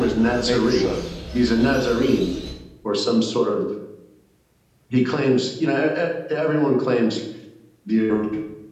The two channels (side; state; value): both; identical; correlation 1.00